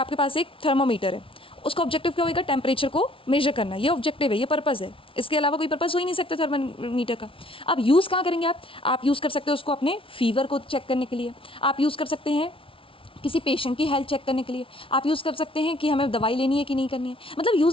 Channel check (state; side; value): late; right; 0.25 ms